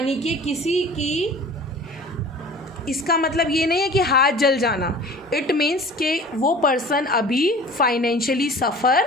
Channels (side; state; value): both; normal; correlation 0.43